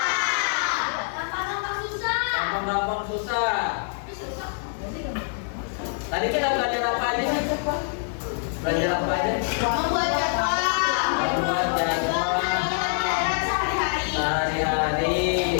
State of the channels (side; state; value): right; silent; digital silence